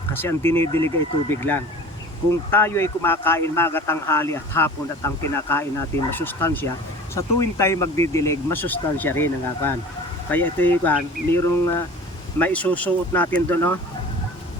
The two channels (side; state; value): both; normal; correlation 0.41